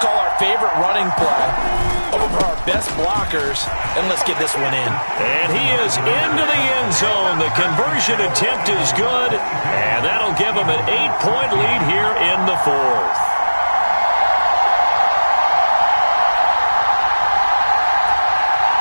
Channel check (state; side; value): inverted; both; correlation -1.00